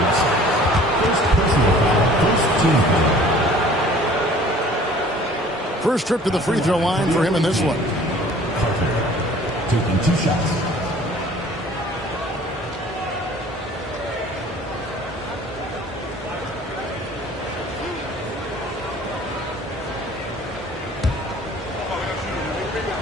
First trip to the free throw line for him in this one. Carter taking 2 shots.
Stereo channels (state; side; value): normal; both; correlation 0.50